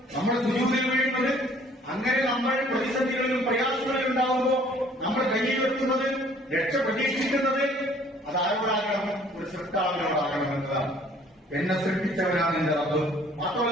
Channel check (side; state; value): both; normal; correlation 0.57